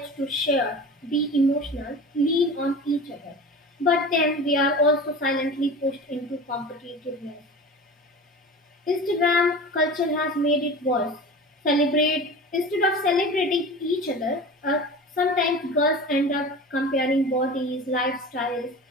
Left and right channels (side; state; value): both; normal; correlation 0.35